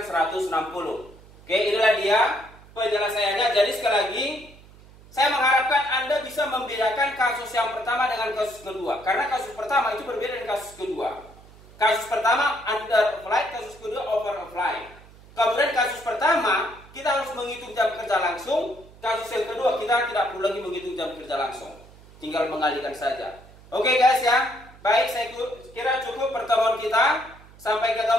160. Oke, inilah dia penjelasannya. Jadi sekali lagi saya mengharapkan Anda bisa membedakan kasus yang pertama dengan kasus kedua. Karena kasus pertama itu berbeda dengan kasus kedua. Kasus pertama under apply, kasus kedua over apply. Kemudian kasus pertama kita harus menghitung jam kerja langsung. Kasus yang kedua, kita tidak perlu lagi menghitung jam kerja langsung. Tinggal mengalihkan saja. Oke guys ya. Baik, saya kira cukup pertemuan kita. Sampai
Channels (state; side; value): noise; right; hum, 22 dB below the sound